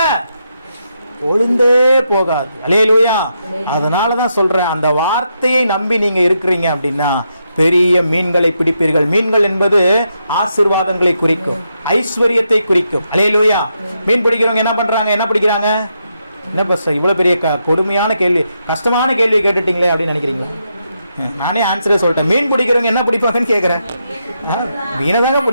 ஒளிந்தே போகாது. அல்லேலூயா. அதனாலதான் சொல்றேன், அந்த வார்த்தையை நம்பி நீங்க இருக்கிறீங்க அப்படின்னா பெரிய மீன்களை பிடிப்பீர்கள். மீன்கள் என்பது ஆசீர்வாதங்களை குறிக்கும், ஐஸ்வர்யத்தை குறிக்கும். அல்லேலூயா. மீன் பிடிக்கிறவங்க என்ன பண்றாங்க? என்ன பிடிக்கிறாங்க? என்ன பஸ் இவ்வளவு பெரிய கொடுமையான கேள்வி, கஷ்டமான கேள்வி கேட்டுட்டீங்களே அப்படின்னு நினைக்கிறீங்களா? நானே ஆன்சரே சொல்லிட்டேன். மீன் பிடிக்கிறவங்க என்ன பிடிப்பாங்கன்னு கேட்கிறேன். மீனை தாங்க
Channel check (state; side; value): inverted; both; correlation -0.82